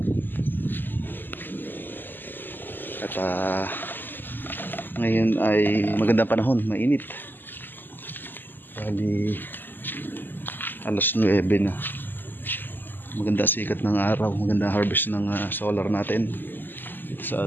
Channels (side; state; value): right; late; 0.092 ms